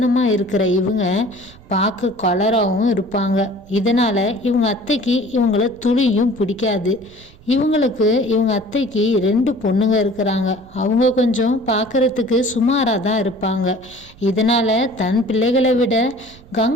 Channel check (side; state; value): right; noise; rumble, 24 dB below the sound